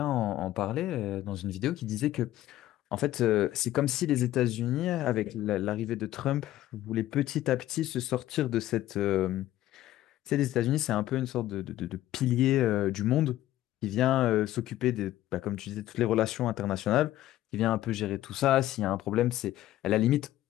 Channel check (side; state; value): right; quieter; 14.3 dB